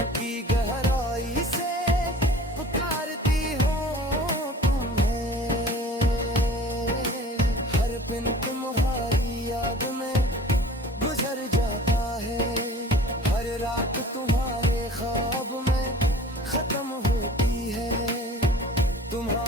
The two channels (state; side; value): normal; both; correlation 0.46